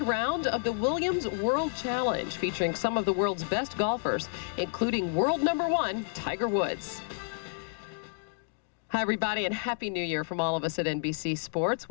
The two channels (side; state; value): right; silent; digital silence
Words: round of the Williams World Challenge, featuring some of the world's best golfers, including world #1, Tiger Woods. Hi, everybody, and Happy New Year from all of us at NBC Sports.